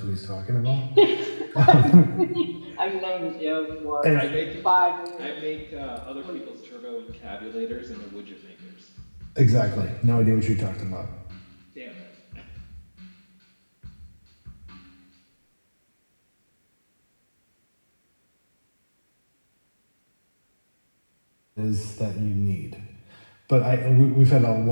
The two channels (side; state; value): both; inverted; correlation -1.00